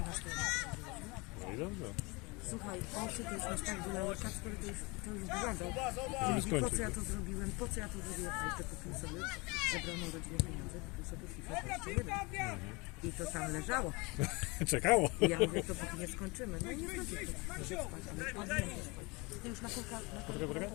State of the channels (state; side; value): quieter; right; 26.6 dB